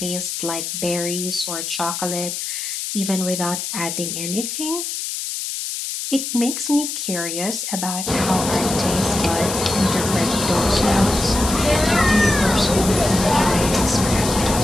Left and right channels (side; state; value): left; noise; hiss, 5 dB below the sound